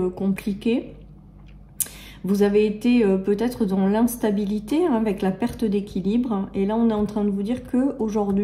compliquée. Vous avez été peut-être dans l'instabilité avec la perte d'équilibre. Et là, on est en train de vous dire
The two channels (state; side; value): identical; both; correlation 1.00